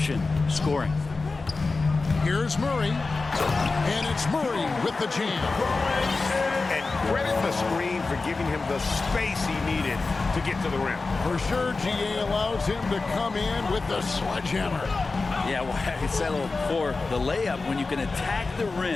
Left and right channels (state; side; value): quieter; right; 3.8 dB